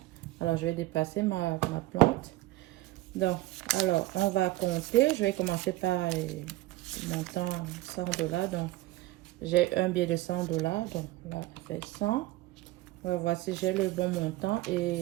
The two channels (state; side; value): quieter; left; 17.8 dB